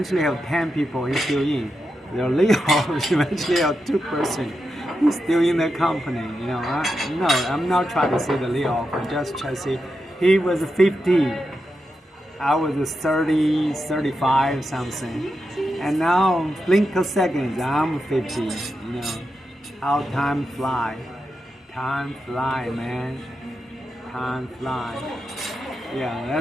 have 10 people. He's still in. They're lay off. Eventually have 2 person. He's still in the company. You know, no, I'm not trying to say the lay off. I'm just trying to say he was 50. I was 30, 35 something. And now, blink of seconds, I'm 50. You know, how time fly. Time fly, man. Time fly. Yeah,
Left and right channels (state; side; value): normal; both; correlation 0.87